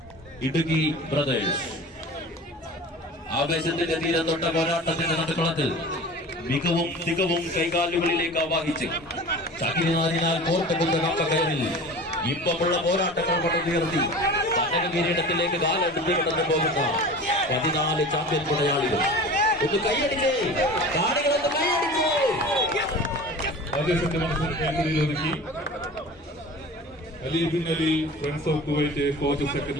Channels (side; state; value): both; normal; correlation 0.37